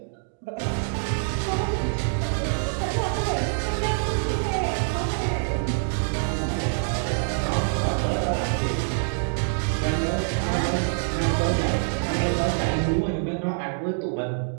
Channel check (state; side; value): silent; left; digital silence